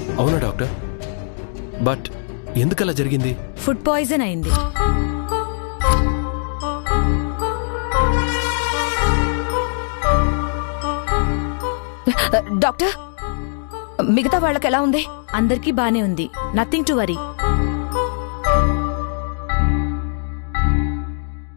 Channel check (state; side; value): silent; right; digital silence